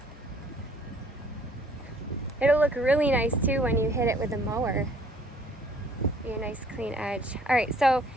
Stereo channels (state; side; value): normal; both; correlation 0.59